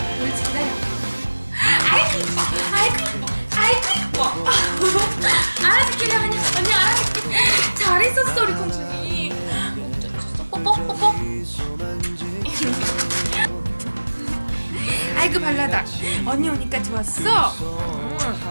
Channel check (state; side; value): inverted; both; correlation -1.00